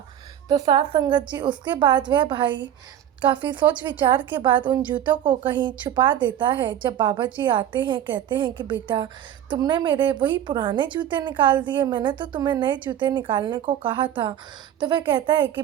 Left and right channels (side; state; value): left; quieter; 10.7 dB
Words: तो साथ संगत जी, उसके बाद वह भाई काफ़ी सोच विचार के बाद उन जूतों को कहीं छुपा देता है। जब बाबा जी आते हैं, कहते हैं कि बेटा, तुमने मेरे वही पुराने जूते निकाल दिए, मैंने तो तुम्हें नए जूते निकालने को कहा था। तो वह कहता है कि